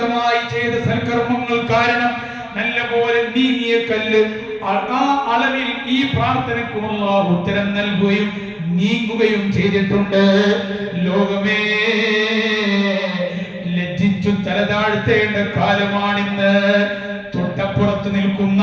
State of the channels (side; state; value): both; identical; correlation 1.00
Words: ചെയ്ത സൽക്കർമ്മങ്ങൾ കാരണം നല്ലപോലെ നീങ്ങിയ കല്ല് ആ അളവിൽ ഈ പ്രാർത്ഥനയ്ക്ക് അല്ലാഹു ഉത്തരം നൽകുകയും നീങ്ങുകയും ചെയ്തിട്ടുണ്ട്. ലോകമേ, ലജ്ജിച്ചു തലതാഴ്ത്തേണ്ട കാലമാണിന്ന്. തൊട്ടപ്പുറത്ത് നിൽക്കുന്ന